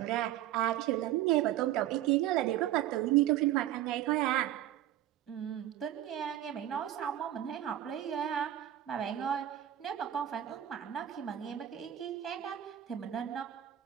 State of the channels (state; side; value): quieter; left; 12.4 dB